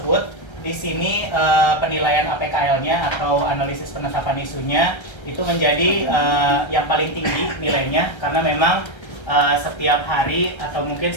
di sini penilaian APKL-nya atau analisis penetapan isunya itu menjadi yang paling tinggi nilainya, karena memang setiap hari atau mungkin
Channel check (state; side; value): late; right; 1.3 ms